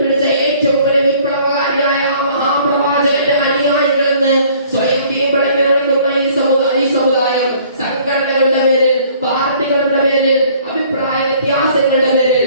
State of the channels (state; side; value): inverted; both; correlation -0.56